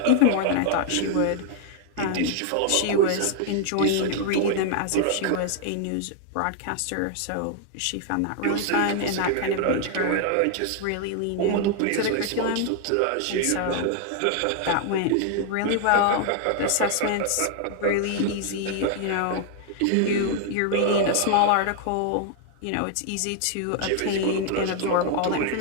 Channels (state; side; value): different; both; correlation 0.00